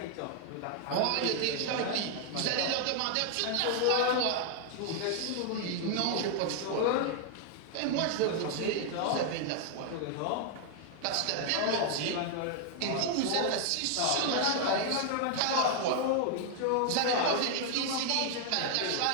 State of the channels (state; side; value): different; both; correlation 0.00